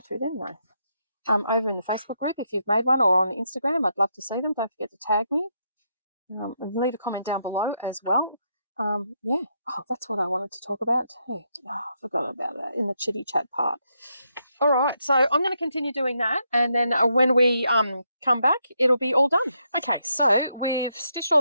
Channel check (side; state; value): both; inverted; correlation -0.79